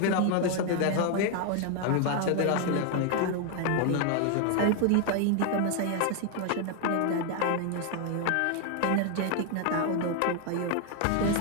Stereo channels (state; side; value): different; both; correlation 0.00